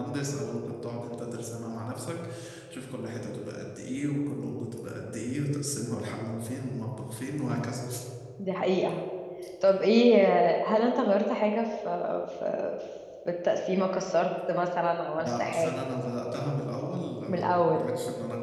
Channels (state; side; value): identical; both; correlation 1.00